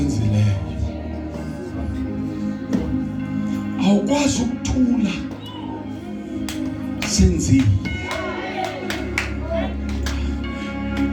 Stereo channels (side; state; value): both; identical; correlation 1.00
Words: Awukwazi ukuthula senzile.